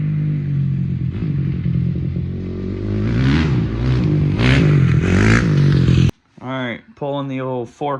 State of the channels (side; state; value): both; identical; correlation 1.00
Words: right, pulling the old